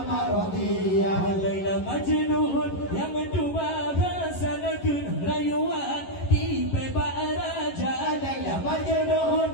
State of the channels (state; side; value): late; right; 11 ms